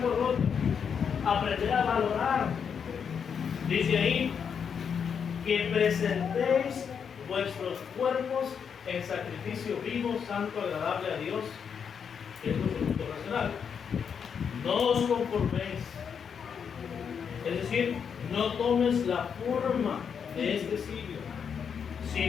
roto. Aprender a valorar. Dice ahí que presentéis vuestros cuerpos en sacrificio vivo, santo, agradable a Dios, que es nuestro culto racional. No os conforméis. Es decir, no tomes la forma de este siglo,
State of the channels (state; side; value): quieter; right; 7.0 dB